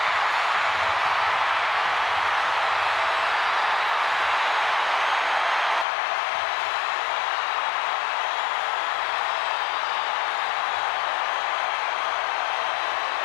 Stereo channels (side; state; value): right; drops out; at 5.9 s